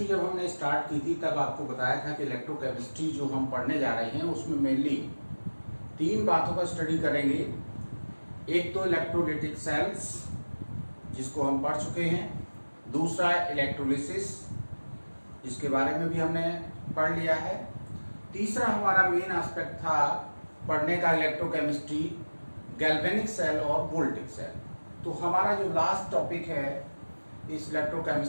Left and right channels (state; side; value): inverted; both; correlation -1.00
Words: जब हमने स्टार्ट की थी तब आपको बताया था कि इलेक्ट्रोकेमिस्ट्री जो हम पढ़ने जा रहे हैं उसमें मेनली तीन बातों का स्टडी करेंगे। एक तो इलेक्ट्रोलाइटिक सेल्स जिसको हम पढ़ चुके हैं, दूसरा इलेक्ट्रोलिसिस जिसके बारे में भी हमने पढ़ लिया है, तीसरा हमारा मेन एस्पेक्ट था पढ़ने का इलेक्ट्रोकेमिस्ट्री गैल्वेनिक सेल और वोल्टिक सेल। तो हमारा जो लास्ट टॉपिक है इस